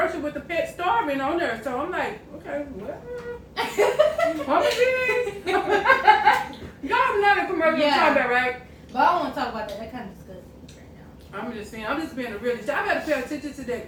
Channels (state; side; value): identical; both; correlation 1.00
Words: with the pet starving on there. So I'm like, okay, well, y'all know the commercial I'm talking about, right? But I don't want to talk about that. That kind of disgusts me right now. I'm just saying, I'm just being a realist. I gotta pay attention to